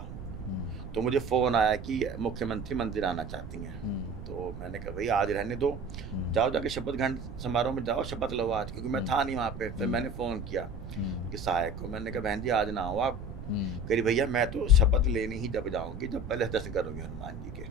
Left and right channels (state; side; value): noise; right; rumble, 10 dB below the sound